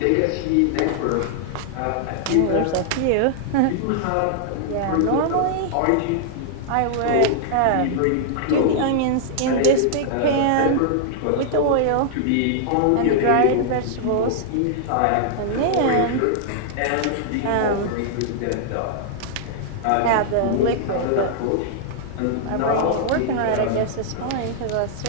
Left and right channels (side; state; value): both; different; correlation -0.01